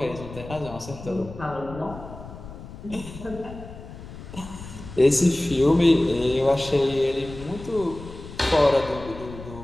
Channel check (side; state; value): left; noise; rumble, 14 dB below the sound